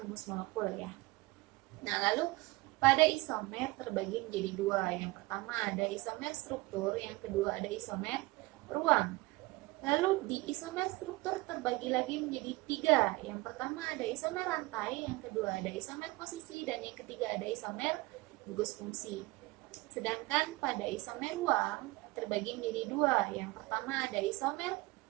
molekul ya. Nah, lalu pada isomer terbagi menjadi dua. Yang pertama ada isomer struktur, yang kedua ada isomer ruang. Lalu di isomer struktur terbagi lagi menjadi tiga. Yang pertama ada isomer rantai, yang kedua ada isomer posisi, dan yang ketiga ada isomer gugus fungsi. Sedangkan pada isomer ruang terbagi menjadi dua. Yang pertama ada isomer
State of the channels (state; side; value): quieter; left; 22.1 dB